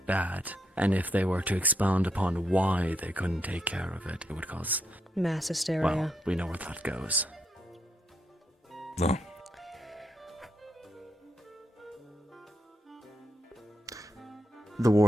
bad. And if they were to expound upon why they couldn't take care of it, it would cause... Mass hysteria. Well, we know where that goes. No. The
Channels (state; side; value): normal; both; correlation 0.80